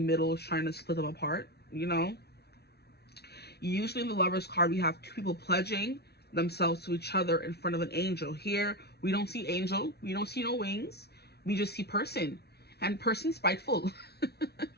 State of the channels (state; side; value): late; right; 0.48 ms